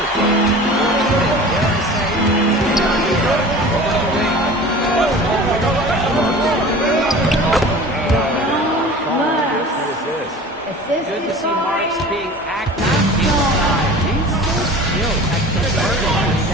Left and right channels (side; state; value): both; normal; correlation 0.40